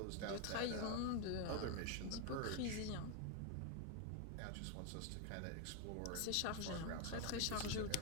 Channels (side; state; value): both; different; correlation 0.01